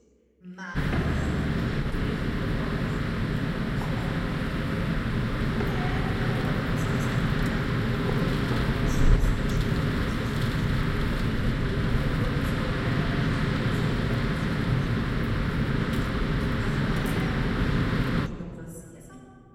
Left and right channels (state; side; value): identical; both; correlation 1.00